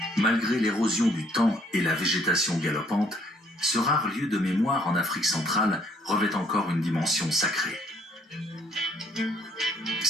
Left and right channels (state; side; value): normal; both; correlation 0.64